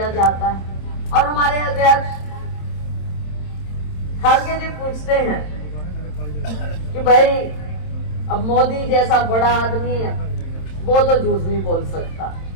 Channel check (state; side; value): late; right; 27 ms